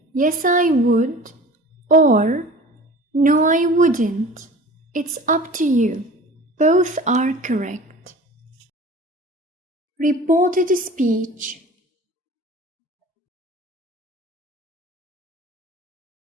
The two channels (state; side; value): normal; both; correlation 0.42